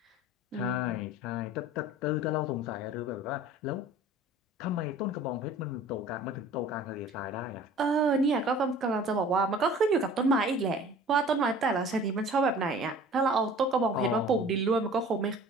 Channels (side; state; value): both; normal; correlation 0.46